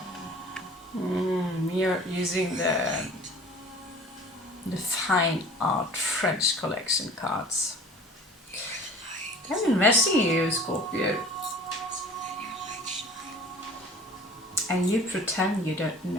You're using the fine art French collection cards. I'm investing in you, Scorpio. And you pretend you don't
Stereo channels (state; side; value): normal; both; correlation 0.46